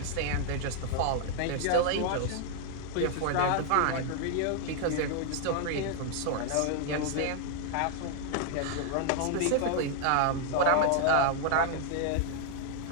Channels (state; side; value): different; both; correlation 0.00